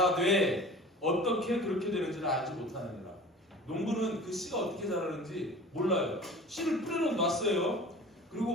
어떻게 그렇게 되는지를 알지 못하느니라. 농부는 그 씨가 어떻게 자라는지 몰라요. 씨를 뿌려놓았어요.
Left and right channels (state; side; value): normal; both; correlation 0.41